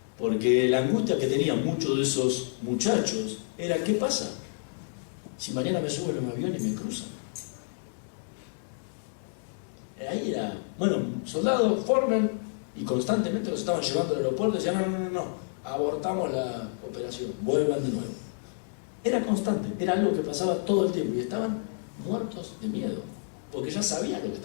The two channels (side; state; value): right; silent; digital silence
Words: Porque la angustia que tenían muchos de esos muchachos era: ¿qué pasa si mañana me suben en un avión y me cruzan? Ahí era, bueno, soldados forman y constantemente los estaban llevando al aeropuerto y decían: no, abortamos la operación, vuelvan de nuevo. Era constante, era algo que pasaba todo el tiempo y estaban muertos de miedo, porque ya sabían lo que